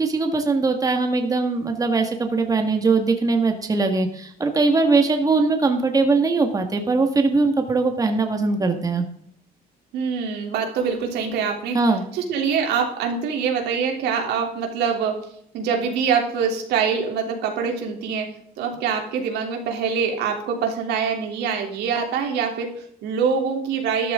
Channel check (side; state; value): left; quieter; 4.3 dB